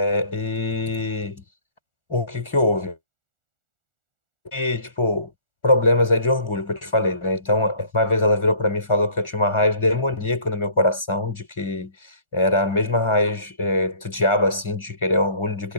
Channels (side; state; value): right; late; 1.4 ms